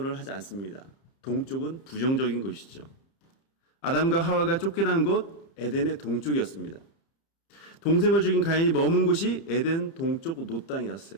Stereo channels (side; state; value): right; late; 30 ms